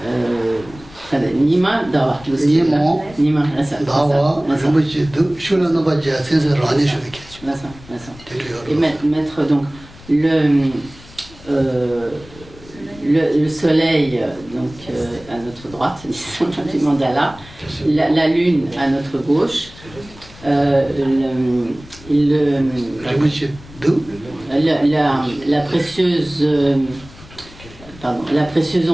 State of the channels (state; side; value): noise; left; rumble, 20 dB below the sound